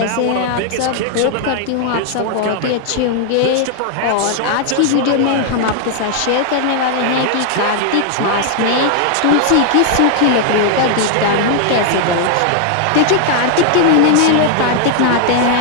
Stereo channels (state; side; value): different; both; correlation 0.00